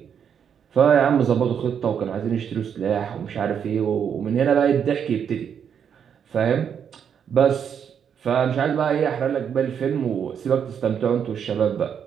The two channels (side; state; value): left; quieter; 7.9 dB